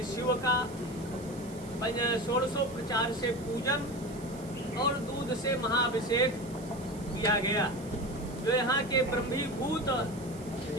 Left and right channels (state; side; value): noise; right; hiss, 20 dB below the sound